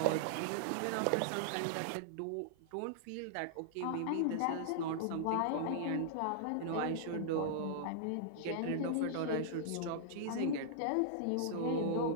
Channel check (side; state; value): both; different; correlation -0.01